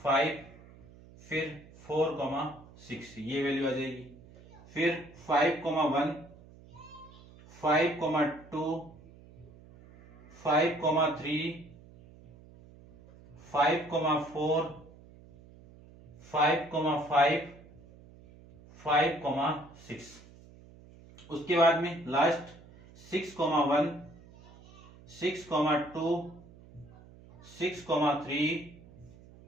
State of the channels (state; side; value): noise; right; hum, 22 dB below the sound